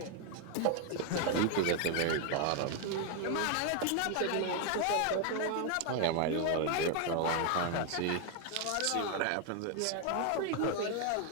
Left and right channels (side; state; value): both; different; correlation 0.00